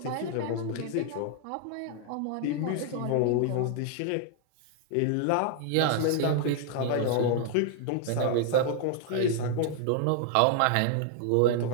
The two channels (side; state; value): both; different; correlation 0.00